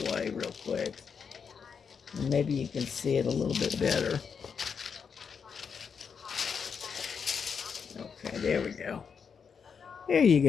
way real quick. And maybe you can see it a little bit better. Okay, there we go. There you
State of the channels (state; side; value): quieter; right; 6.3 dB